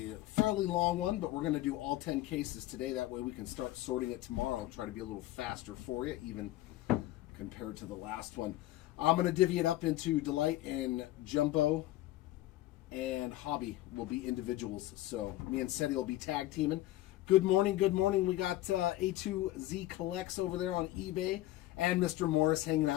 a fairly long one, but we're going to do all 10 cases today. That way we can start sorting it tomorrow and try to be a little faster for you, even compared to the last one. I'm going to divvy it up into delight and jumbo, and hobby will be individuals. So me and Seti will be tag teaming. Good morning, good morning. We got A2Z Collects over there on eBay, and Mr. Morris hanging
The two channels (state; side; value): quieter; right; 15.6 dB